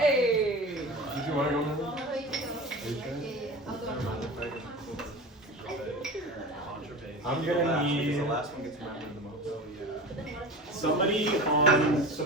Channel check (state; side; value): normal; both; correlation 0.33